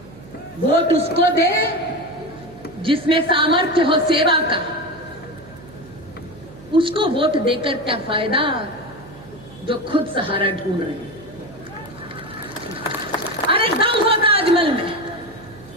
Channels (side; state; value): right; noise; hum, 20 dB below the sound